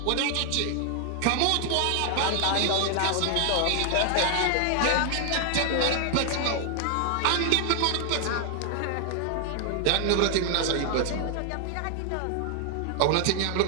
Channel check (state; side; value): different; both; correlation 0.00